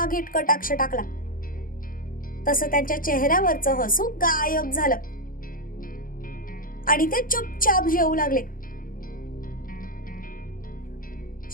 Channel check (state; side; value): late; right; 0.41 ms